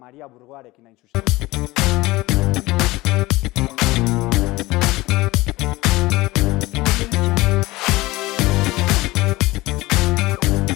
Burgoarekin hain zuzen.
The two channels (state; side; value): quieter; right; 19.9 dB